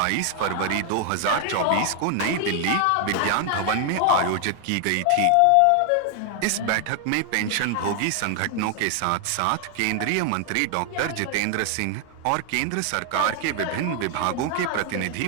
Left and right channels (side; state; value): both; different; correlation 0.00